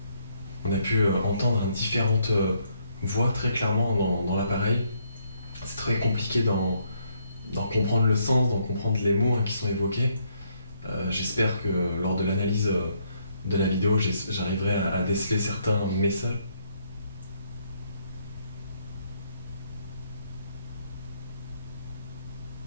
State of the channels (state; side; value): inverted; both; correlation -0.72